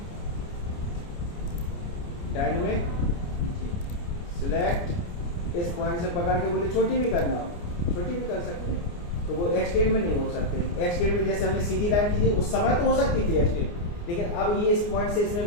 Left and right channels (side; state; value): right; late; 29 ms